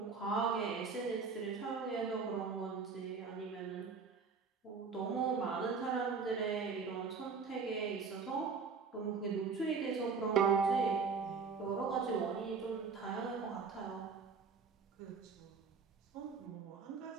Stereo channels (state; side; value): quieter; left; 5.2 dB